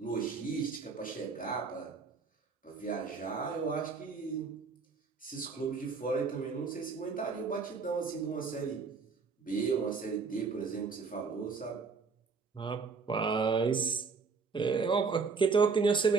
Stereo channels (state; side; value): quieter; left; 4.9 dB